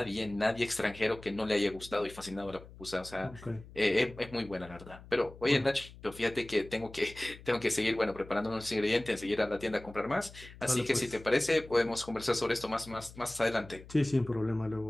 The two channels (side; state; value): left; noise; hum, 18 dB below the sound